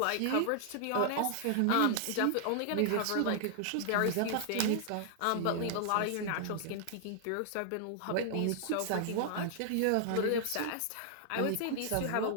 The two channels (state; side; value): different; both; correlation -0.01